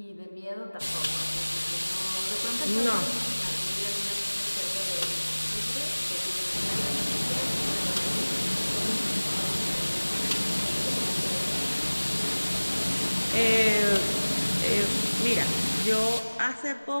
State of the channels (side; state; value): both; inverted; correlation -1.00